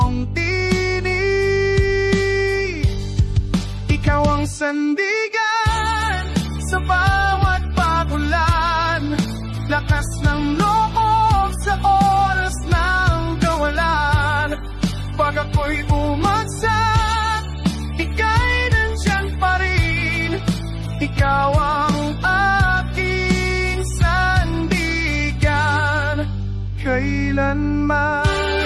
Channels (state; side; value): identical; both; correlation 1.00